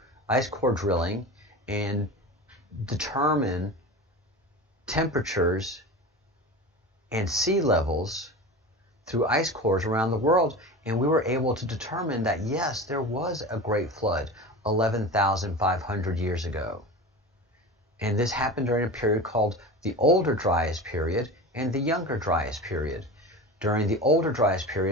drilling, and determine temperatures and sea levels through ice cores around the world, and we were able to determine that yes, there was a Great Flood 11,500 years ago. And this happened during a period called the Older Dryas period and the Younger Dryas period. During the Older Dryas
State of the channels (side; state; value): both; normal; correlation 0.30